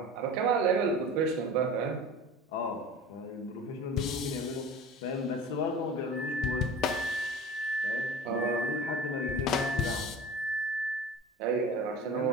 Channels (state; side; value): normal; both; correlation 0.36